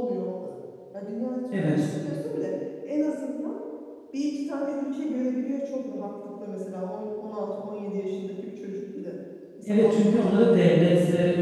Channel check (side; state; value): both; identical; correlation 1.00